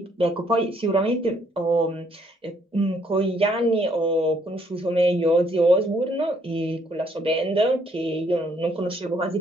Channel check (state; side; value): normal; both; correlation 0.68